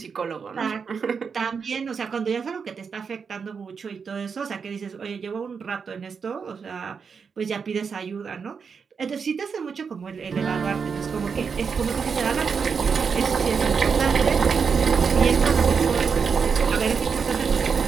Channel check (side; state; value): left; quieter; 5.9 dB